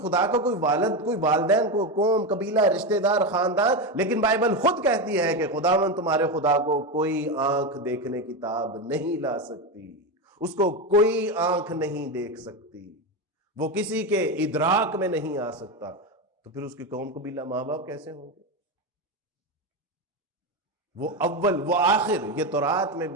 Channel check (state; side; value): normal; both; correlation 0.14